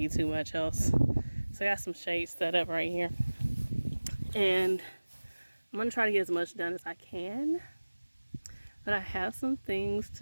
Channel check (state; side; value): inverted; both; correlation -1.00